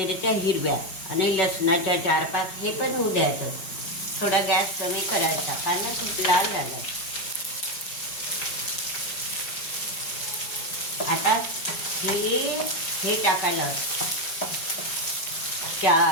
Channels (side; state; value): right; late; 5.2 ms